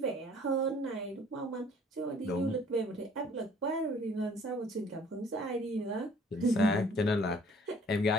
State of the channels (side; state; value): both; normal; correlation 0.55